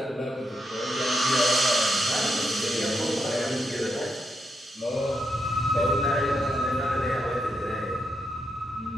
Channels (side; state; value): both; normal; correlation 0.82